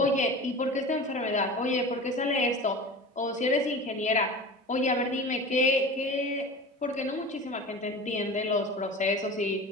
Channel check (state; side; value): normal; both; correlation 0.34